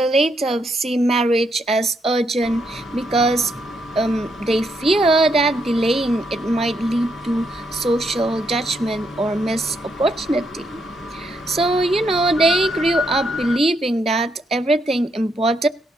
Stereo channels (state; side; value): normal; both; correlation 0.77